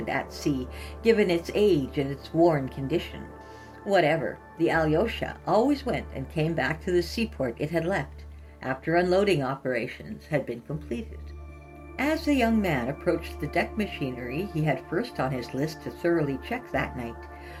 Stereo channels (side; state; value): both; identical; correlation 1.00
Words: at sea, given its age and its worn condition. Whatever, the Alyosha always went and came back to the seaport it had left, after unloading operations had been completed. As the young man approached the deck machinery he had first on his list to thoroughly check that night,